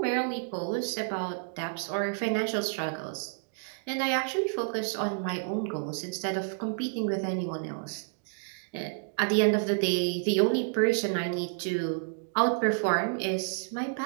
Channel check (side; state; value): left; silent; digital silence